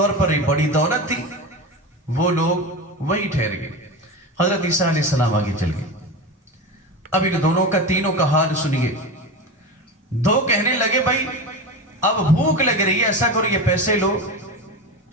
پر ایک بڑی دولت تھی، وہ لوگ وہی ٹھہر گئے۔ حضرت عیسیٰ علیہ السلام آگے چل گئے۔ اب ان دونوں کا، تینوں کا حال سنیے۔ دو کہنے لگے بھائی اب بھوک لگ رہی ہے، ایسا کرو یہ پیسے لو،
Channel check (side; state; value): both; normal; correlation 0.24